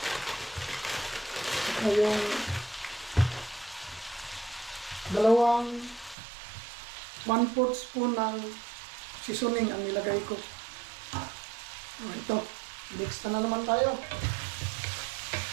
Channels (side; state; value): left; drops out; at 6.2 s